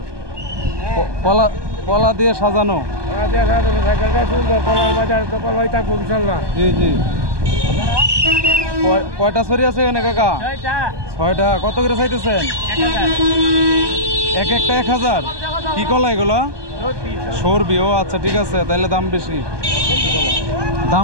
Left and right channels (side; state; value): left; late; 1.2 ms